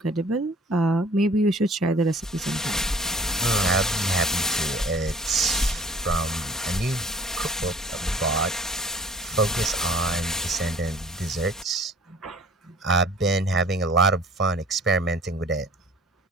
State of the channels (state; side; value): normal; both; correlation 0.50